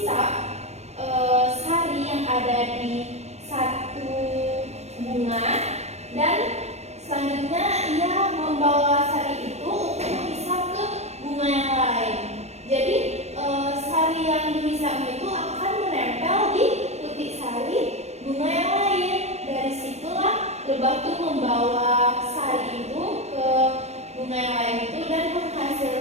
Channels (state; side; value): late; left; 0.31 ms